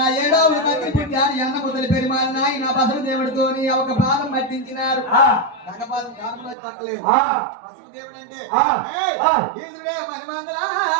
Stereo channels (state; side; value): drops out; left; at 6.6 s